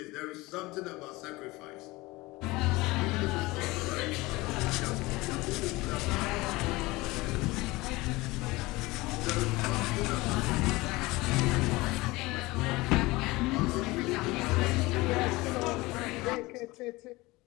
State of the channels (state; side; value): quieter; right; 21.4 dB